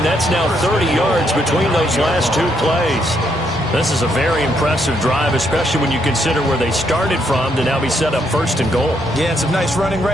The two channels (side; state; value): both; normal; correlation 0.75